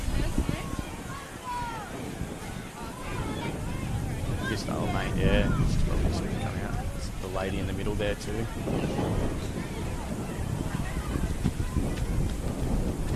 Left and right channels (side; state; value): both; identical; correlation 1.00